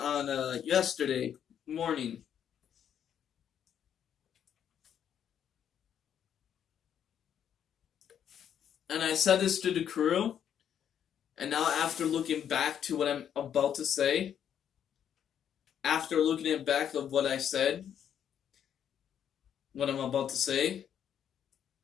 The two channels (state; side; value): quieter; right; 9.1 dB